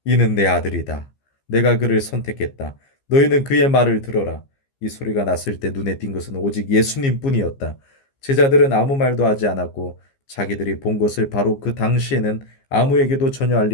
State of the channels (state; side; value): late; right; 15 ms